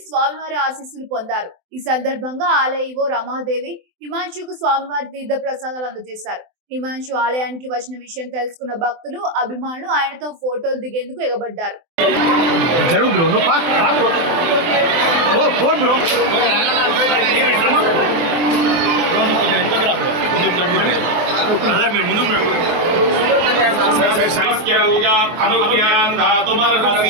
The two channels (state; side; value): late; left; 24 ms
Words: స్వామివారి ఆశీస్సులు పొందారు. ఈ సందర్భంగా ఆలయ ఈవో రమాదేవి హిమాంశుకు స్వామివారి తీర్థ ప్రసాదాలు అందజేశారు. హిమాంశు ఆలయానికి వచ్చిన విషయం తెలుసుకున్న భక్తులు, అభిమానులు ఆయనతో ఫోటోలు దిగేందుకు ఎగబడ్డారు.